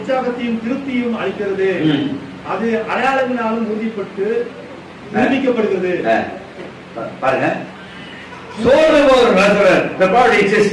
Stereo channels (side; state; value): both; identical; correlation 1.00